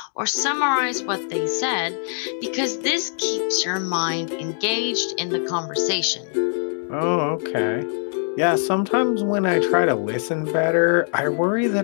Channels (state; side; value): silent; right; 60 dB below the other